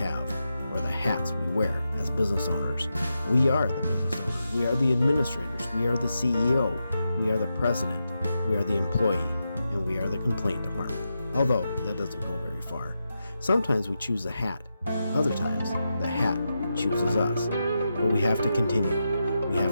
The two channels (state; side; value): inverted; both; correlation -0.88